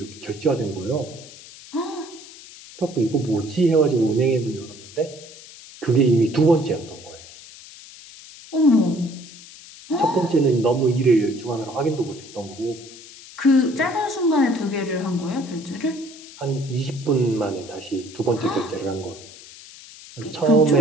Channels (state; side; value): noise; left; hiss, 18 dB below the sound